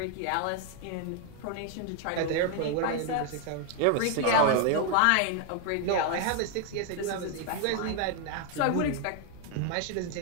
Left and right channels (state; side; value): different; both; correlation 0.01